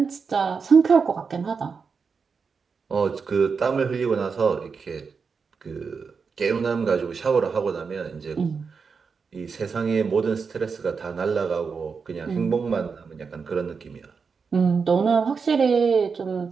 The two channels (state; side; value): quieter; left; 5.4 dB